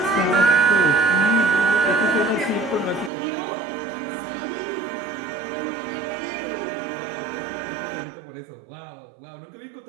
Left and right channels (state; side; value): drops out; left; at 3.1 s